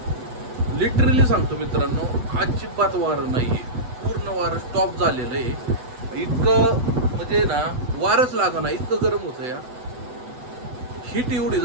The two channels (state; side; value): late; left; 8.0 ms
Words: लिटरली सांगतो मित्रांनो, अजिबात वारं नाहीये. पूर्ण वारं स्टॉप झालेलं आहे. इतकं म्हणजे ना वारच लागा ना, इतकं गरम होतं या. हीट एवढी